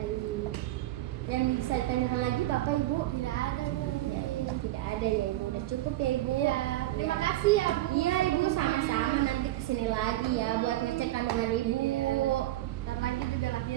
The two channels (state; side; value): quieter; left; 15.7 dB